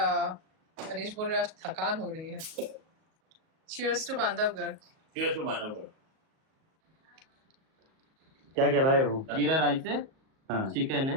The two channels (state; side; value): late; left; 38 ms